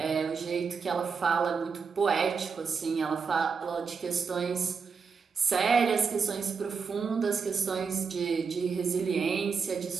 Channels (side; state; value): left; quieter; 5.6 dB